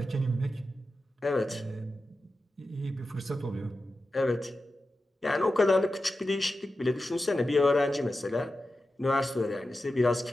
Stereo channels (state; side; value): normal; both; correlation 0.92